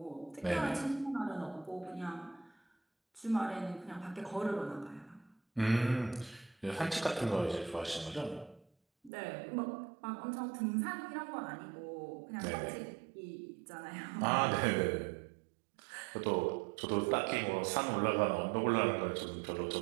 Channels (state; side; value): drops out; left; at 9.1 s